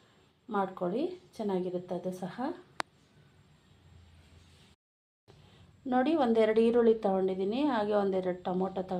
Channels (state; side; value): identical; both; correlation 1.00